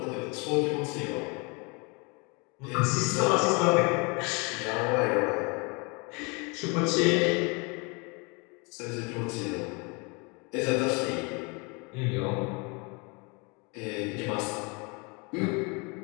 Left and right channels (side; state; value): right; quieter; 30.4 dB